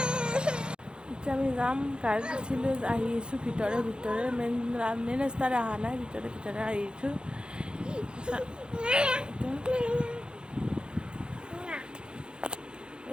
এতিয়া আমি যাম, গাড়ীত উঠিলোঁ, আহি আছোঁ ভিতৰে মেইন ৰাস্তাৰে অহা নাই, ভিতৰে আহিছোঁ।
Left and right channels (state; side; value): late; left; 0.050 ms